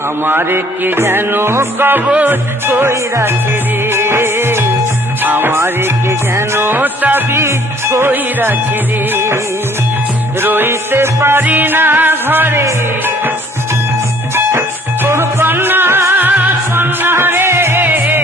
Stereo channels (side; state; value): both; normal; correlation 0.58